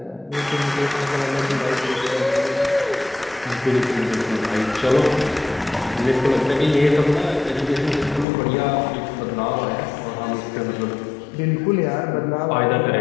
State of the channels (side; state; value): right; drops out; at 8.2 s